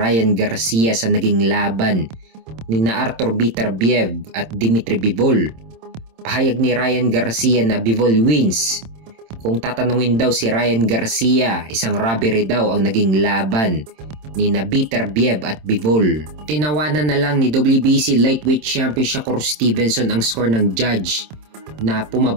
Garcia sa naging laban ni na Artur Beterbiev at Dmitry Bivol. Pahayag ni Ryan Garcia na Bivol wins. Kung tatanungin daw si Ryan Garcia, isang robbery daw ang naging laban ni na Beterbiev at Bivol. Tinawanan na lang ni WBC Lightweight Champion Shakur Stevenson ang score ng judge na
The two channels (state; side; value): late; left; 26 ms